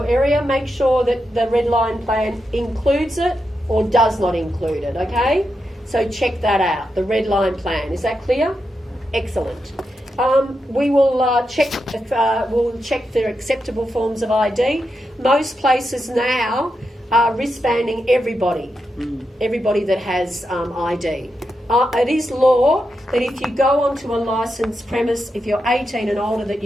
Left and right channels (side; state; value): both; normal; correlation 0.86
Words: area, make sure that the red line plan includes it or does not include it, okay? So check that out, the red line plan. Is that clear? Excellent. We will check for acceptable forms of ID. Most places now are wristbanding everybody that has ID. It is law that if you go onto a licensed premise, if you're 18 and older, that